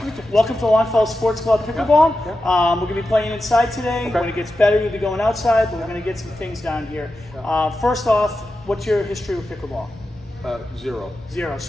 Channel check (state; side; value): normal; both; correlation 0.91